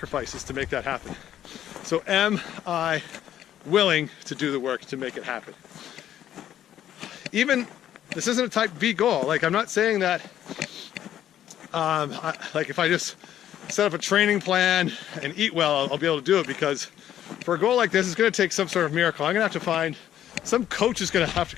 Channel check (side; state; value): right; quieter; 11.2 dB